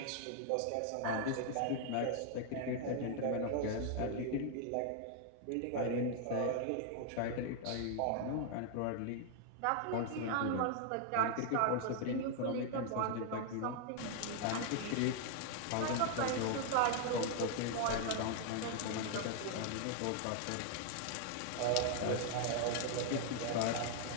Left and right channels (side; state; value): both; different; correlation 0.00